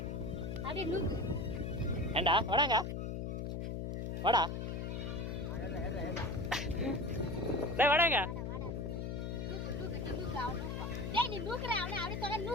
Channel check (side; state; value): left; noise; hum, 3 dB below the sound